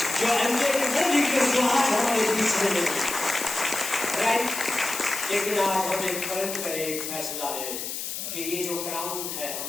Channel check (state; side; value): noise; left; hiss, 5 dB below the sound